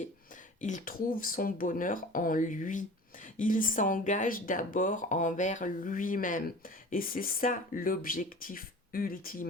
Il trouve son bonheur en lui. Il s'engage d'abord envers lui-même. Et c'est ça l'objectif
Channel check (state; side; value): normal; both; correlation 0.41